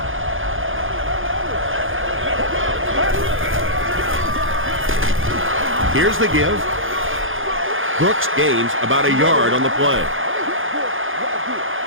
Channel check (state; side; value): late; left; 0.59 ms